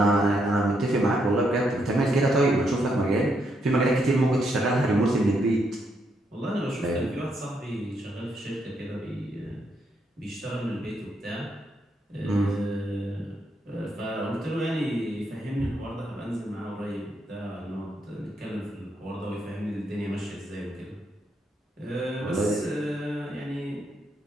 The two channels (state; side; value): normal; both; correlation 0.77